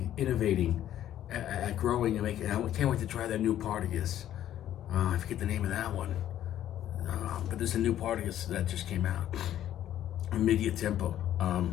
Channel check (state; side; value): quieter; right; 11.8 dB